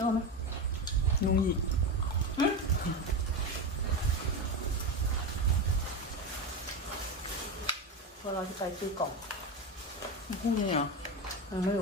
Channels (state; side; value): normal; both; correlation 0.18